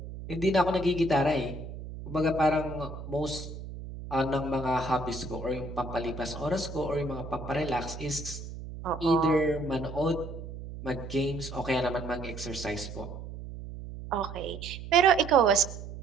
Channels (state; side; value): noise; right; hum, 10 dB below the sound